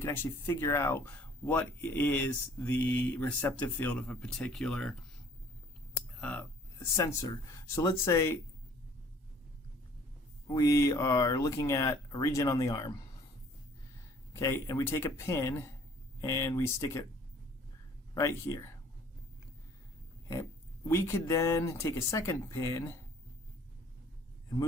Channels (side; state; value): both; normal; correlation 0.55